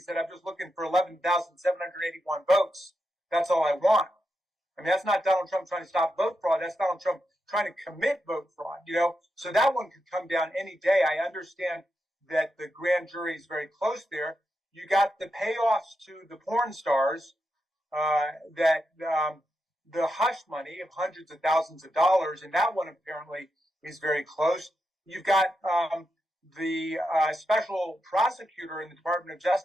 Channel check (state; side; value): normal; both; correlation 0.86